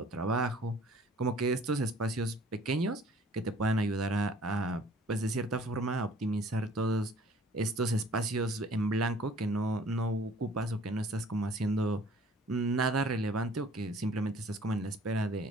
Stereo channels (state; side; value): normal; both; correlation 0.53